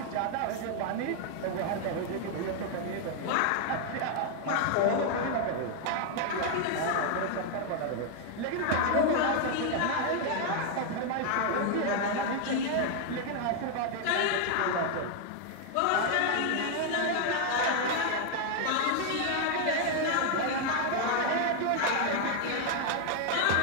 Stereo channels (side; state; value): both; different; correlation 0.00